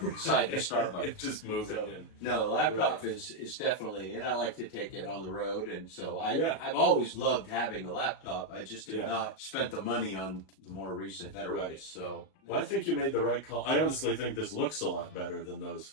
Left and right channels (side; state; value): right; late; 38 ms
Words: inside the Starbucks. It's just moving So, in. no, laptop is definitely, and I like to take it on the road, and so Yeah. I've always loved having a laptop. I just have Yeah. not spent the money on the more recent, better Right. ones. So Well, I think you made the right call. I honestly think this looks a lot better than